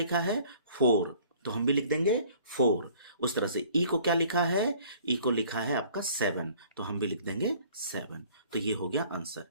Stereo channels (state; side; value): inverted; both; correlation -0.53